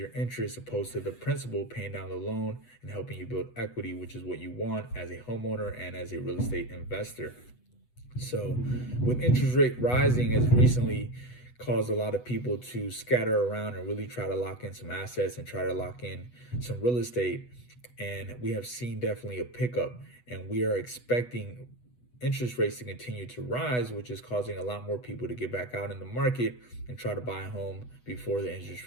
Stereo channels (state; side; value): late; right; 8.1 ms